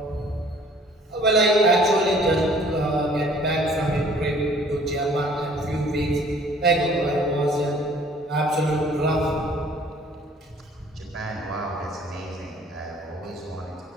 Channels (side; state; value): both; normal; correlation 0.55